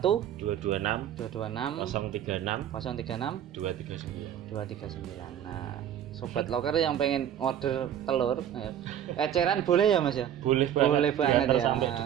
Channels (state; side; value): quieter; left; 10.1 dB